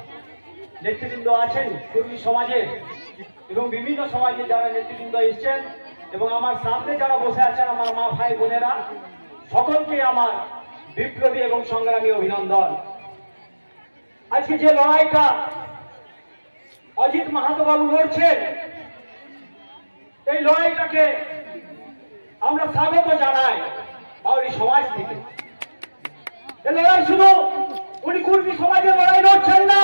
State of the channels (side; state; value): both; inverted; correlation -1.00